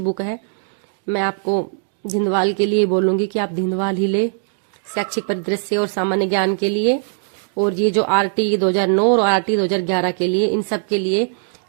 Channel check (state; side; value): silent; left; digital silence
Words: बुक है। मैं आपको धिंदवाल के लिए बोलूंगी कि आप धिंदवाल ही ले, शैक्षिक परिदृश्य और सामान्य ज्ञान के लिए। और ये जो आरटी 2009 और आरटी 2011 के लिए, इन सब के लिए